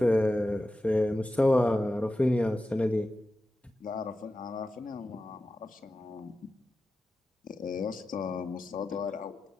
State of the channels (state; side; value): normal; both; correlation 0.93